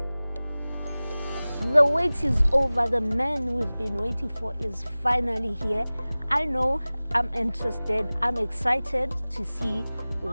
The wait is over. The man we've been waiting for is finally here. I know, I'm interested. I'm excited to see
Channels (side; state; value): both; inverted; correlation -0.99